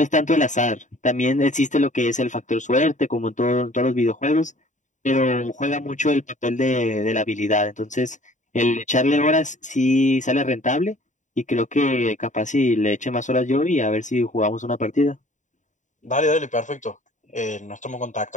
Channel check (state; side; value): late; right; 0.36 ms